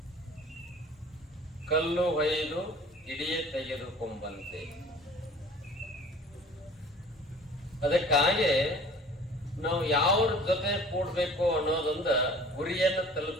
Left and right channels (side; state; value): both; normal; correlation 0.46